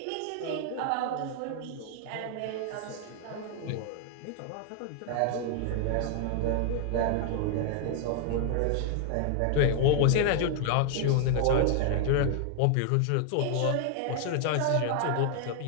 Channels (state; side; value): different; both; correlation 0.00